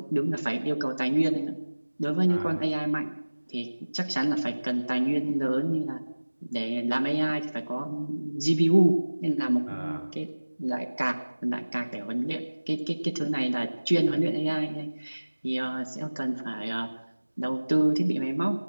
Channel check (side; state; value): both; inverted; correlation -1.00